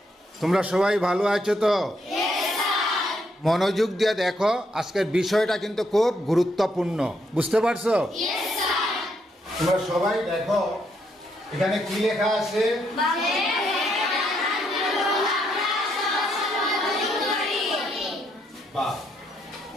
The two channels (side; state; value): both; normal; correlation 0.75